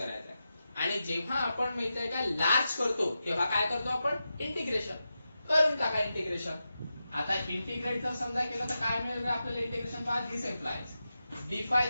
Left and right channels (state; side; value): inverted; both; correlation -0.90